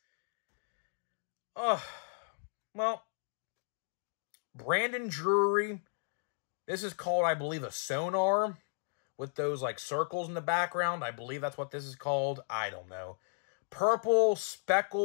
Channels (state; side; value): silent; right; digital silence